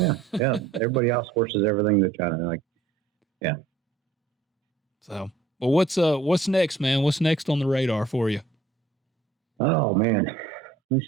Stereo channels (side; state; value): left; quieter; 4.0 dB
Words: yeah. Everybody outsources everything to China. Like, yeah. So, well, what's next, man? What's next on the radar for you? Oh man, let me